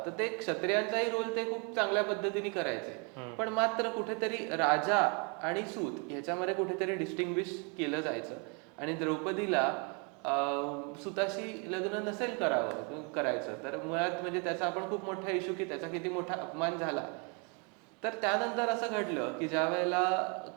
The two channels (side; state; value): left; quieter; 34.4 dB